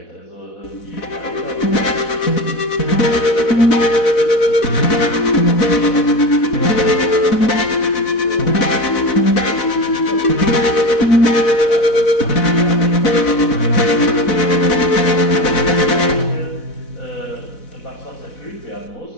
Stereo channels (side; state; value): right; late; 4.1 ms